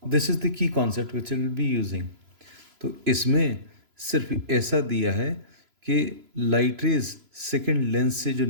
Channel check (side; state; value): left; late; 3.0 ms